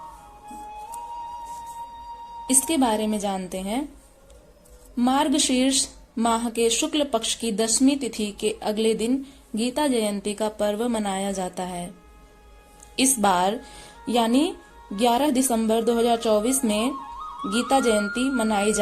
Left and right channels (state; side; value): identical; both; correlation 1.00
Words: इसके बारे में जानते हैं। मार्गशीर्ष माह के शुक्ल पक्ष की 10वीं तिथि के अगले दिन गीता जयंती का पर्व मनाया जाता है। इस बार यानी 11 दिसंबर 2024 में गीता जयंती मनाई